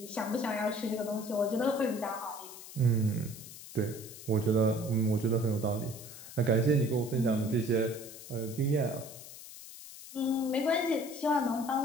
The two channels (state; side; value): noise; left; hiss, 14 dB below the sound